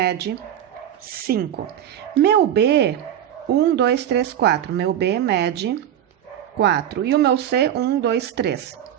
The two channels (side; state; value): left; quieter; 10.6 dB